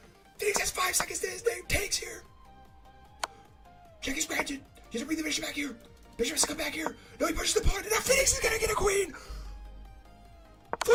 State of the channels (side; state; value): both; identical; correlation 1.00